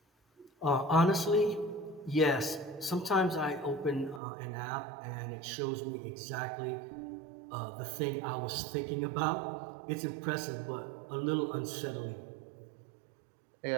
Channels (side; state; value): left; drops out; at 4.2 s